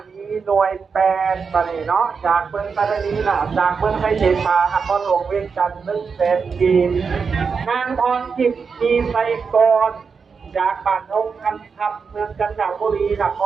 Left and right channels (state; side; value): quieter; left; 5.5 dB